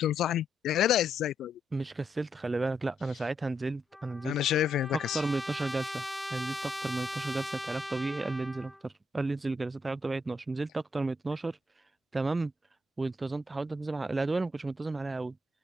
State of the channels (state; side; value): normal; both; correlation 0.78